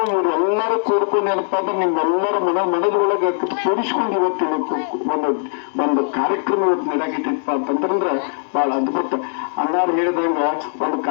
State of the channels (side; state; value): right; silent; digital silence